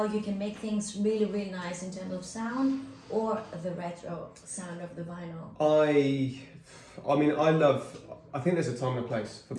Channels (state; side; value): identical; both; correlation 1.00